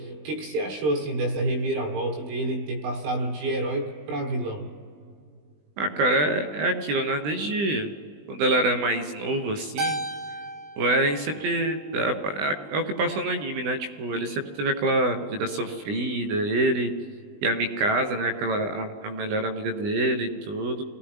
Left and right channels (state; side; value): late; left; 20 ms